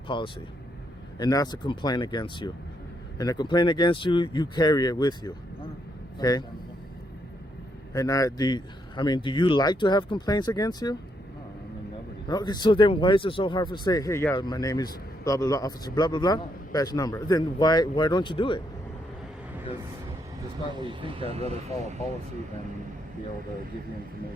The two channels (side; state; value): both; normal; correlation 0.76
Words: and that's a complaint against you, and a complaint against you, you carry it with you, okay? And do you like to have complaints against you? Okay, so then why is it so hard to say, hey, yeah, my name is blah, blah, blah, officer, blah, blah, blah, badge number? Then why don't you do it? Because despite what you think, I'd rather follow policy than be able to give you